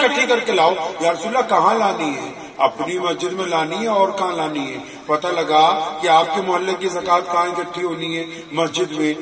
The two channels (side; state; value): both; identical; correlation 1.00